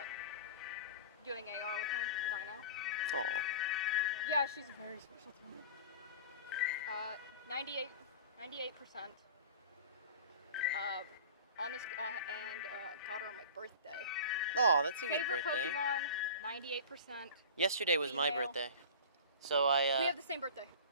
doing AR with my dino. Aw. Yeah, she's very special to me. 98%. On this, and got her on my birthday. Oh, that's a good Favorite birthday. Pokemon, 98%. Yesterday was my female. birthday. So I, We have the same birthday.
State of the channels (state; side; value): inverted; both; correlation -0.36